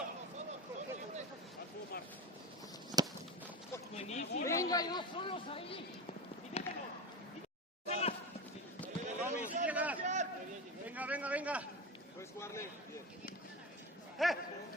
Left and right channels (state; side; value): normal; both; correlation 0.24